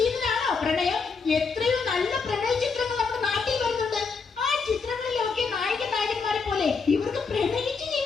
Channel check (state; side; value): quieter; right; 5.0 dB